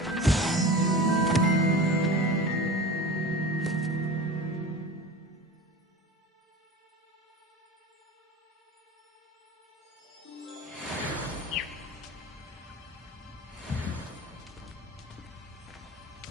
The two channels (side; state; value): both; normal; correlation 0.33